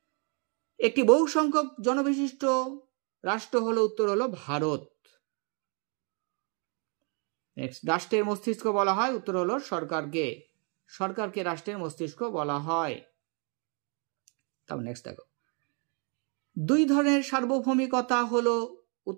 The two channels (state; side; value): quieter; left; 37.2 dB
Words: একটি বহু সংখ্যক জনবিশিষ্ট রাষ্ট্র হলো, উত্তর হলো ভারত। নেক্সট, রাষ্ট্রের মস্তিষ্ক বলা হয়, উত্তর হলো সরকারকে। সরকারকে রাষ্ট্রের মস্তিষ্ক বলা হয়। তারপর নেক্সট দেখো, 2 ধরনের সার্বভৌমিকতা হলো,